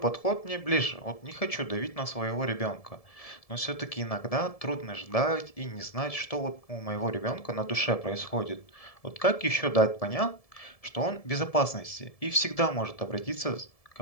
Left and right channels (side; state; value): right; late; 1.7 ms